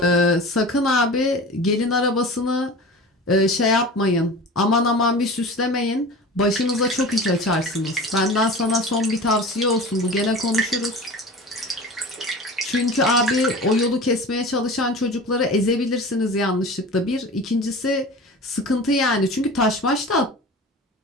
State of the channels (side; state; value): both; normal; correlation 0.36